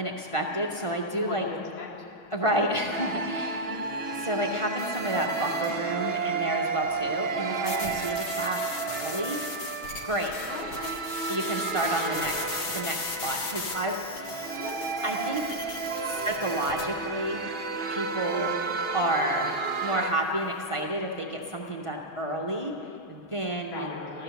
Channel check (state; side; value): late; right; 6.2 ms